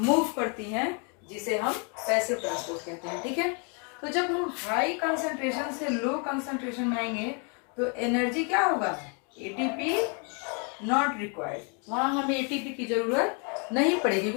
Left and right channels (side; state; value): right; quieter; 36.8 dB